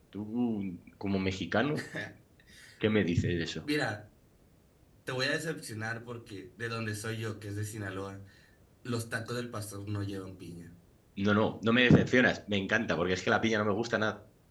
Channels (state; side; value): identical; both; correlation 1.00